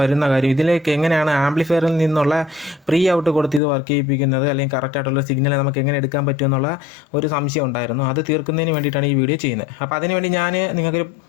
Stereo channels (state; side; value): drops out; right; at 3.6 s